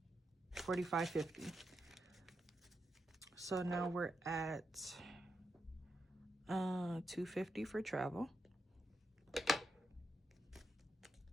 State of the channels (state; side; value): normal; both; correlation 0.85